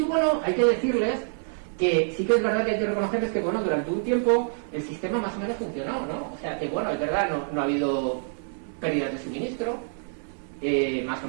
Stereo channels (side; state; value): left; silent; 61 dB below the other